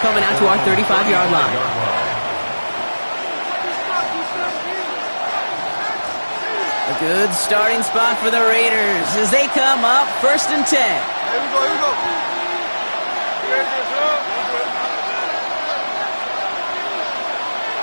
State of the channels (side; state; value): both; inverted; correlation -1.00